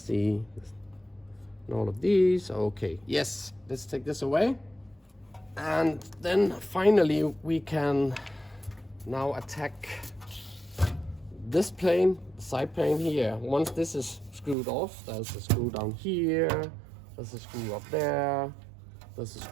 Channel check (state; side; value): drops out; left; at 14.6 s